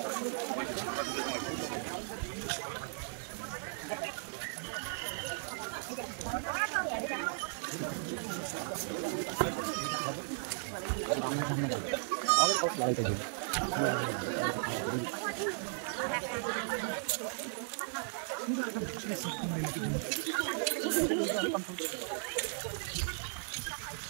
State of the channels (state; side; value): silent; left; digital silence